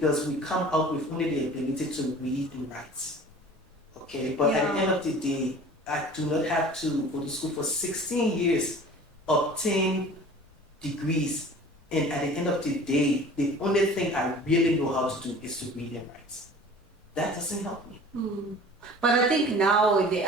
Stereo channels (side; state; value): both; normal; correlation 0.44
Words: we come out with only the ability to read and write. Okay, but at the end of the day, I do not have to go to school for 16 years, obtain degrees, and at the end of the day, the only thing I really know how to do is to read and write. That doesn't help me. But I think now